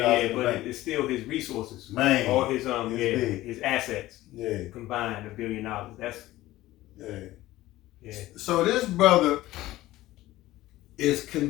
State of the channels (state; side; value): quieter; right; 16.4 dB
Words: Yeah, but it's still his resources. Man, all his his assets. Yeah, combined $1 billion. That's yeah. So this brother is